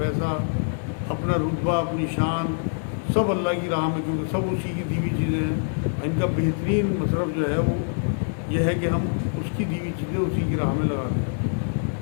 اپنا رتبہ، اپنی شان، سب اللہ کی راہ میں، کیونکہ سب اسی کی دی ہوئی چیزیں ہیں. ان کا بہترین مصرف جو ہے وہ یہ ہے کہ ہم اس کی دی ہوئی چیزیں اسی کی راہ میں لگا دیں.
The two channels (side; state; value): right; silent; digital silence